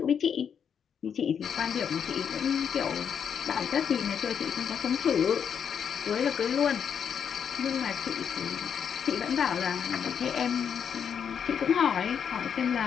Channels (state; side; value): quieter; right; 7.6 dB